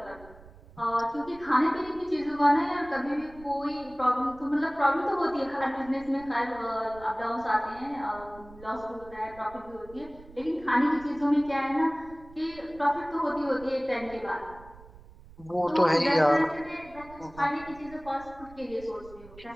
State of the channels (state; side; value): noise; right; rumble, 21 dB below the sound